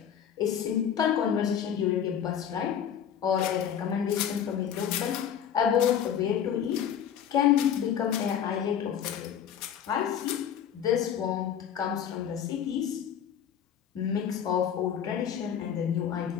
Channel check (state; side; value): quieter; right; 8.9 dB